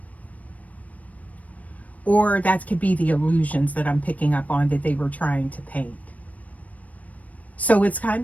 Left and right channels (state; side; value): late; right; 0.070 ms